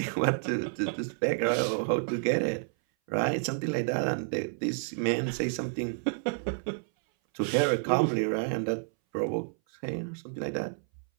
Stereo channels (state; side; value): silent; left; 58 dB below the other